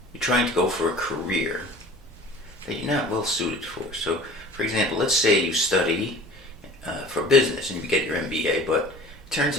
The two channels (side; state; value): both; normal; correlation 0.44